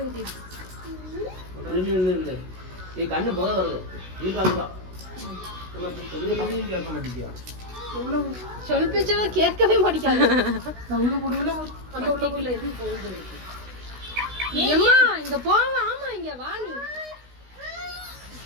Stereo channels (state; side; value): late; left; 16 ms